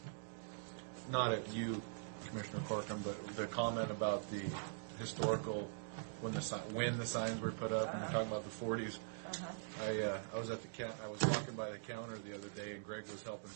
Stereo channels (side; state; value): left; silent; digital silence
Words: not at you, Commissioner Corkum, but the comment about the historical when the signs were put up, talking about the 40s. Uh-huh. I was at I was walking by the counter the other day, and Greg was helping